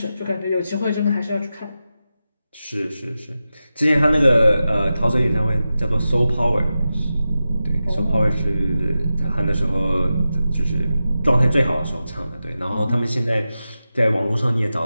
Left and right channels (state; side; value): inverted; both; correlation -0.92